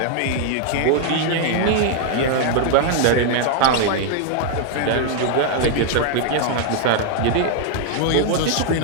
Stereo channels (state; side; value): different; both; correlation 0.00